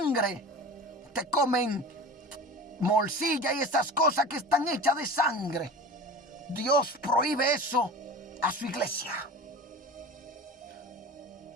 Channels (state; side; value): normal; both; correlation 0.34